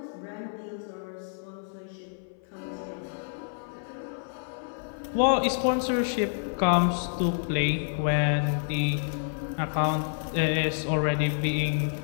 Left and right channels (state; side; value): silent; right; 57 dB below the other